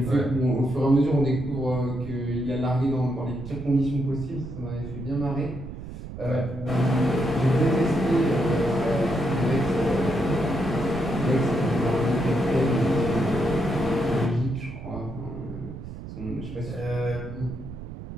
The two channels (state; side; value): noise; right; rumble, 11 dB below the sound